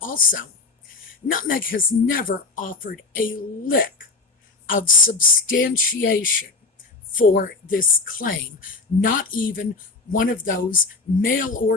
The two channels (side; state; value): right; quieter; 4.1 dB